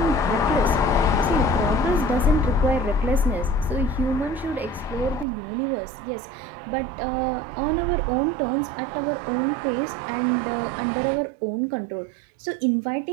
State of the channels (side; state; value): left; drops out; at 5.2 s